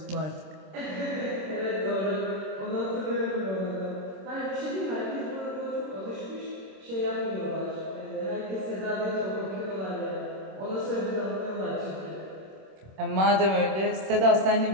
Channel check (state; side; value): late; left; 26 ms